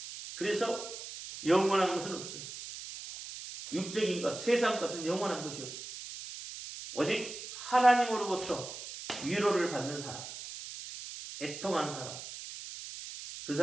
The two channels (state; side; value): noise; right; hiss, 10 dB below the sound